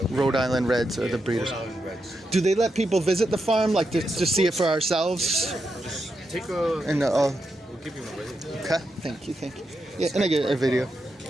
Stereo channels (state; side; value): normal; both; correlation 0.85